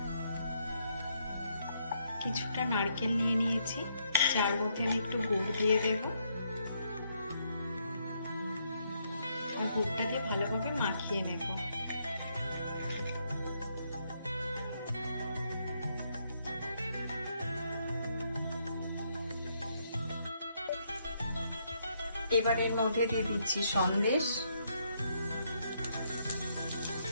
কিছুটা নারকেল নিয়ে নিয়েছি, যার মধ্যে আমি একটু গুড় দিয়ে দেব। আর গুড়টা দিয়ে ভালোভাবে মাখিয়ে নেব। এবার এর মধ্যে দিয়ে দিচ্ছি সন্দেশ।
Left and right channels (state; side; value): inverted; both; correlation -0.74